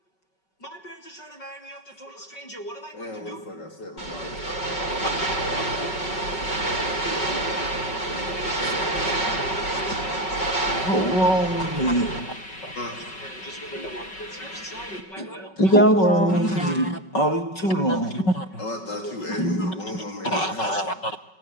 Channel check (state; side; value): late; right; 5.3 ms